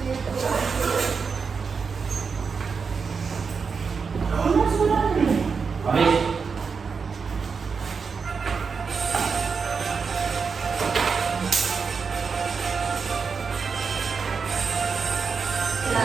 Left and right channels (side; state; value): left; quieter; 5.4 dB